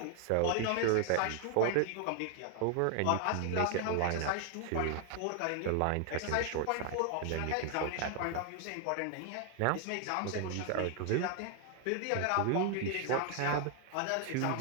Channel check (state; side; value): different; both; correlation 0.00